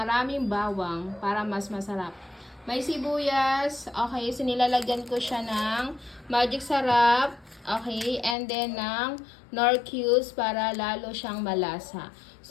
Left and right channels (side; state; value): right; drops out; at 8.3 s